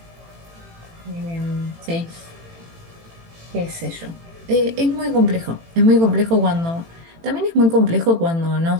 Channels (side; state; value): left; late; 18 ms